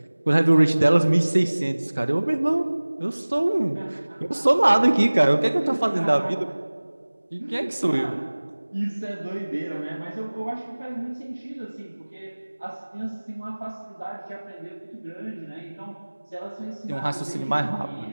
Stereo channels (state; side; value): inverted; both; correlation -1.00